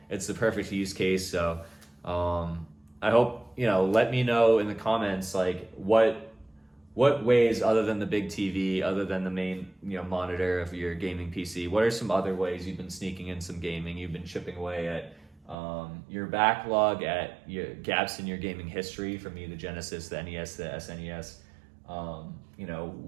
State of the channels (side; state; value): left; drops out; at 15.6 s